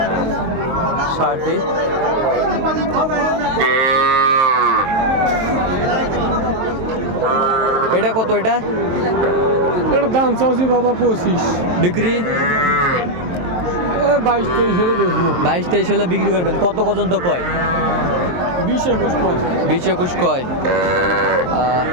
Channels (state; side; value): late; left; 23 ms